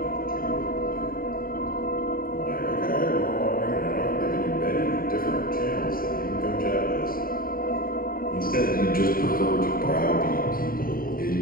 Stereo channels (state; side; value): late; right; 0.42 ms